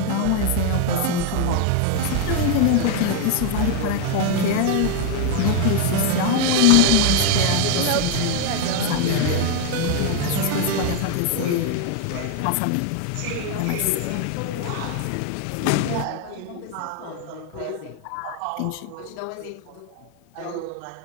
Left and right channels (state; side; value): different; both; correlation 0.01